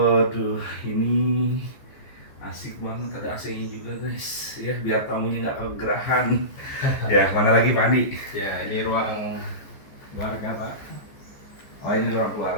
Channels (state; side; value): late; right; 14 ms